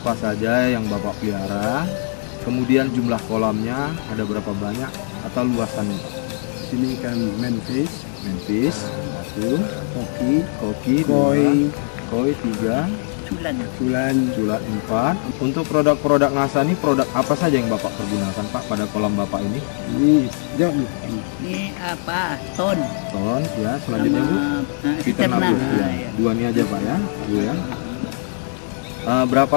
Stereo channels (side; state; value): right; silent; 65 dB below the other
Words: saja yang Bapak pelihara? Kemudian jumlah kolamnya ada berapa banyak atau luasannya, Pak? Ini ikan manfish, satu, koki, koi 3, culat 4. Untuk produk-produk NASA ini produk apa saja yang Bapak pergunakan, Pak, pada kolam Bapak ini? Ini jawab dulu. Ini apa? Ton ya. Selanjutnya Bu, Fiterna Bu. Ya. Dua ini aja Pak ya, Bu ya. Berapa